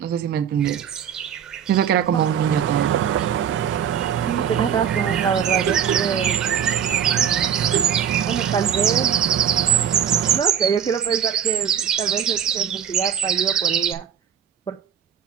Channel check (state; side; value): quieter; left; 8.4 dB